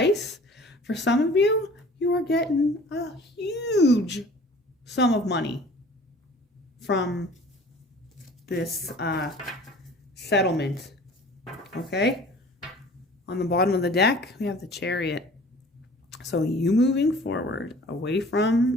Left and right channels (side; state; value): both; normal; correlation 0.47